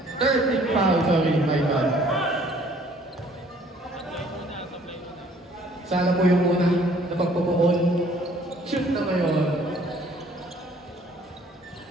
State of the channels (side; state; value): both; normal; correlation 0.58